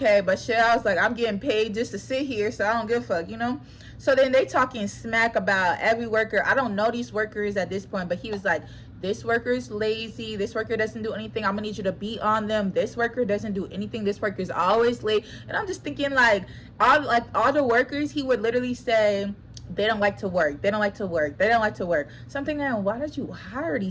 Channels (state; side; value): identical; both; correlation 1.00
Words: but shit, I was like, I'm getting paid just to sit here, so I don't give a fuck, you know. So then they talking smack about every worker. I don't know these workers at this point, but he was like, this worker is lazy, this worker doesn't do anything, I'm gonna need you to beat on them, this worker doesn't do anything, this worker is always late. And I'm just thinking like all the workers, he would literally say they don't like to work, they don't like to work, they don't like to work. So I'm thinking, why did you hire